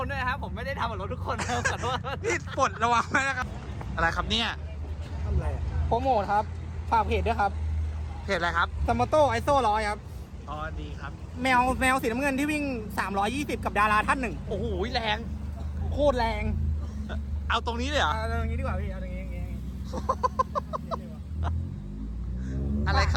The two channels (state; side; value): identical; both; correlation 1.00